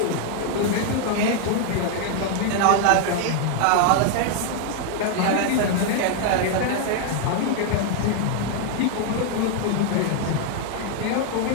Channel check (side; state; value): both; different; correlation 0.00